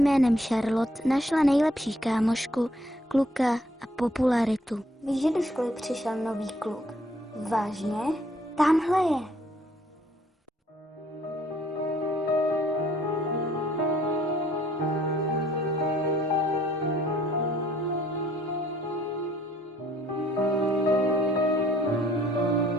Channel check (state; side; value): normal; both; correlation 0.63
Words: Charlotte našla nejlepší kámošku, kluka a popularitu. Víš, že do školy přišel nový kluk? Vážně? Tamhle je.